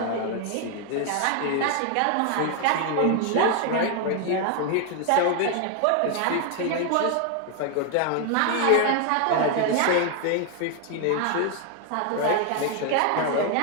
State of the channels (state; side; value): different; both; correlation 0.00